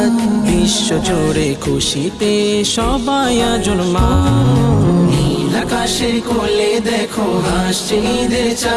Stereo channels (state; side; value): identical; both; correlation 1.00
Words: বিশ্ব জুড়ে খুশিতে সবাই আজ উন্মাদ। নীল আকাশের কোলে দেখো হাসছে ঈদের